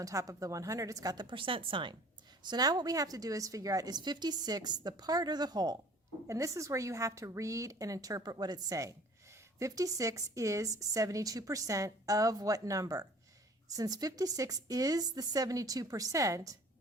top of the 100. It's got the percent sign. So now what we have to do is figure out, is 56 the part or the whole? And this is where you have to read and interpret what it's saying. 56 is 72% of what number? Since 56 is the 72%,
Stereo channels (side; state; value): both; normal; correlation 0.50